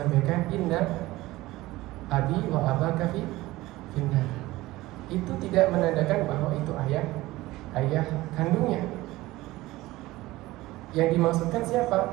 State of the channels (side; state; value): left; quieter; 18.4 dB